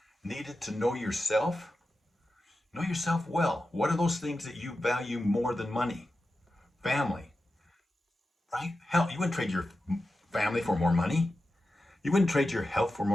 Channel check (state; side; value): normal; both; correlation 0.92